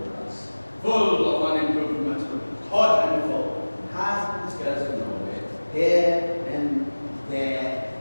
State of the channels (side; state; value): both; inverted; correlation -1.00